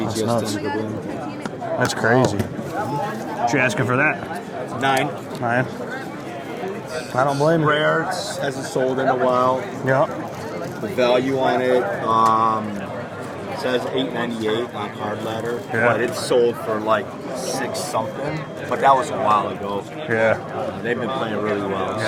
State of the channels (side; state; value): both; identical; correlation 1.00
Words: BGS nuts. 10 Kaboom. That's crazy. What you asking for that? 9. 9. I don't blame you. Rare. Hasn't sold in a while. Yep. The value on it says $8.98 on Card Ladder, but it's sold for like $6 something. But that was a while ago. Yeah. They've been playing really well.